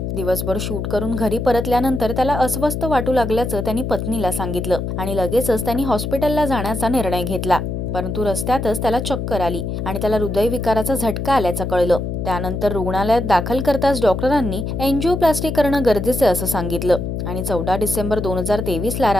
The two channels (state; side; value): noise; left; hum, 3 dB below the sound